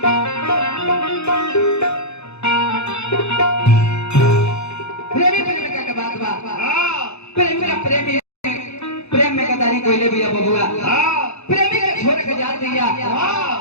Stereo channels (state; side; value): late; right; 0.80 ms